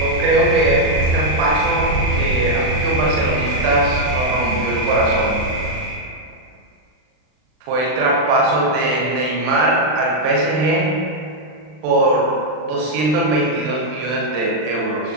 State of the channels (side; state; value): left; late; 39 ms